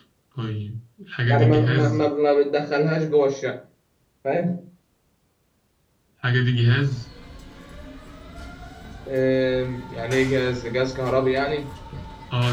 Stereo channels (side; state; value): both; identical; correlation 1.00